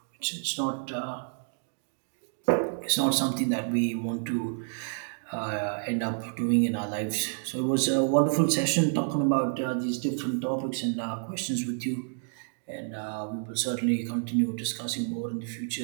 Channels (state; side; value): silent; left; digital silence